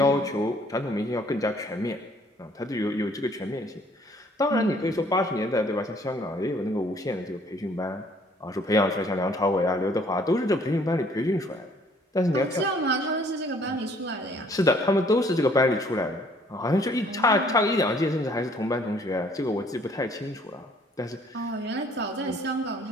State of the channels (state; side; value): normal; both; correlation 0.60